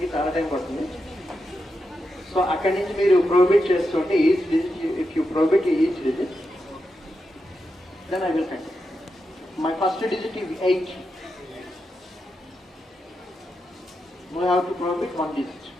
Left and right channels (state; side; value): normal; both; correlation 0.87